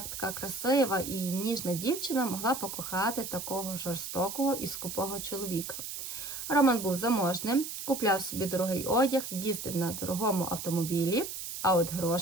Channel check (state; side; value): noise; right; hiss, 7 dB below the sound